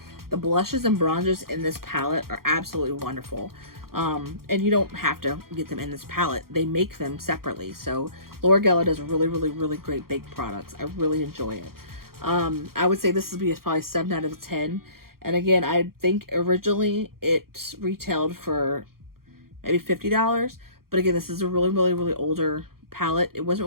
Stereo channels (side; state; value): left; late; 0.93 ms